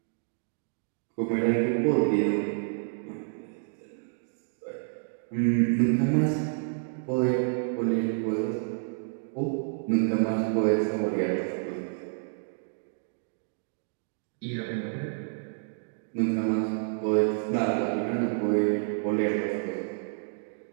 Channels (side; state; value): left; silent; digital silence